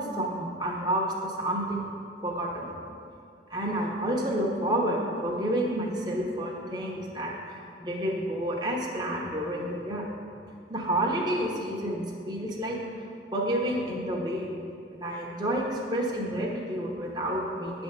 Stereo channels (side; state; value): both; normal; correlation 0.35